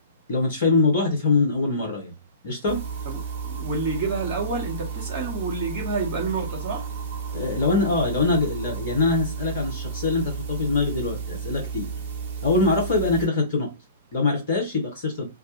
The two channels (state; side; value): inverted; both; correlation -0.40